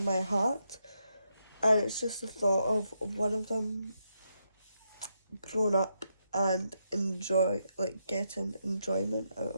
heart. And it's just the thought of one of them growing up and getting enjoyment out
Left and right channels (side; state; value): both; inverted; correlation -0.81